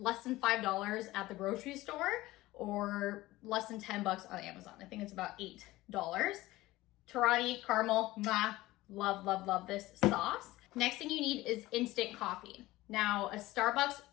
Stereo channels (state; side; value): quieter; right; 18.0 dB